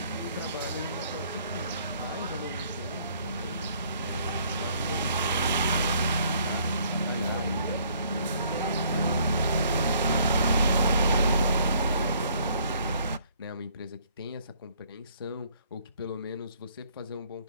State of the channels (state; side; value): inverted; both; correlation -0.62